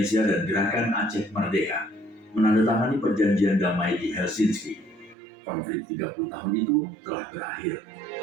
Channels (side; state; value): left; drops out; at 5.2 s